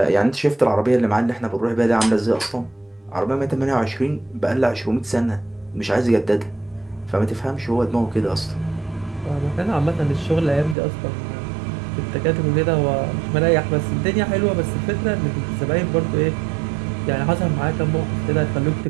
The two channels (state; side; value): drops out; left; at 10.8 s